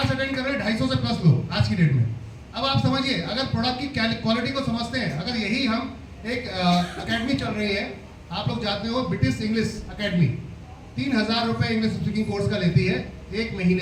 अटेंड कर रहे हैं 250 से प्लस लोग आज की डेट में। अब आप समझिए, अगर प्रोडक्ट की क्वालिटी को समझते हैं, अगर यही हम एक अकेडमी चल रही है, आप लोग जानते हो ब्रिटिश इंग्लिश अकेडमी 3000 रुपये इंग्लिश स्पीकिंग कोर्स का लेती है 1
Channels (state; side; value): identical; both; correlation 1.00